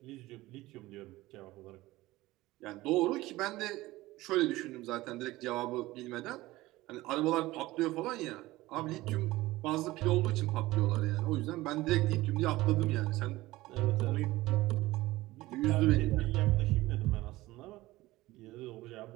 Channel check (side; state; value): left; quieter; 18.3 dB